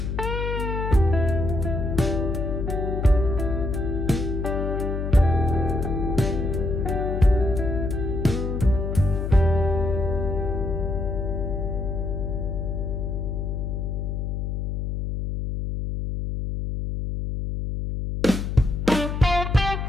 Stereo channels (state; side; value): noise; left; hum, 2 dB below the sound